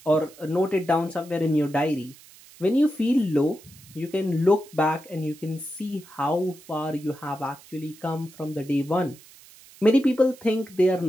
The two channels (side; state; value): right; noise; hiss, 23 dB below the sound